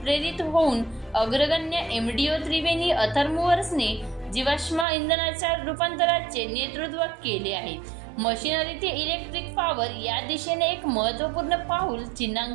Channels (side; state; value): left; drops out; at 4.9 s